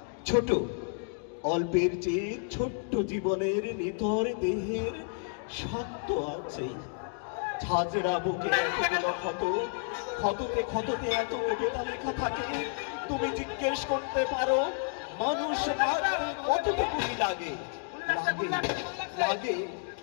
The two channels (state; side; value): silent; right; 57 dB below the other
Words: ছোট, অল্পের চেয়ে ছোট্ট জীবনের নিথর দেহের শক্ত আছে। ঝাঁঝরা বুকে এতগুলো ক্ষত, ক্ষততে ক্ষততে এত কবিতা লেখা থাকে। তুমি জিজ্ঞেস করতে পারো মানুষ মারতে কতটুকুই লাগে? লাগে, লাগে।